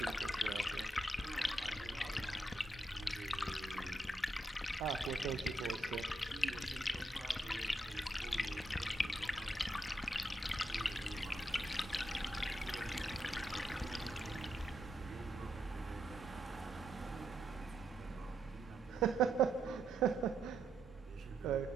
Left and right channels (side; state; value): both; normal; correlation 0.81